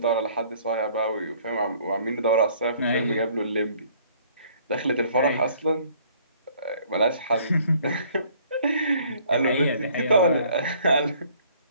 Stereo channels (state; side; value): inverted; both; correlation -0.58